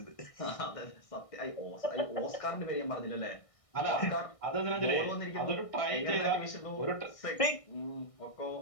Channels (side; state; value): right; late; 1.6 ms